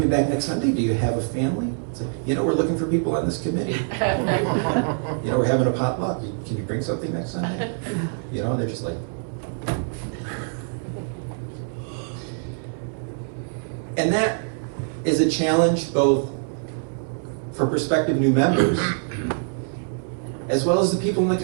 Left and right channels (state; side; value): silent; left; digital silence